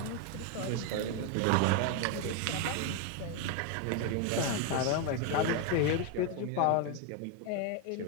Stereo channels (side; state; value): both; different; correlation 0.01